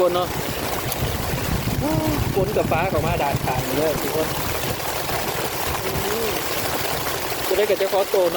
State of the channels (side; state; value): both; identical; correlation 1.00